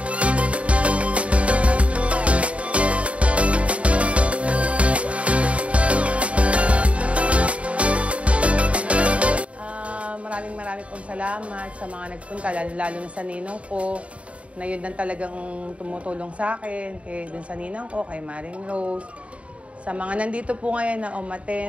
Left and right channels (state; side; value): late; left; 0.064 ms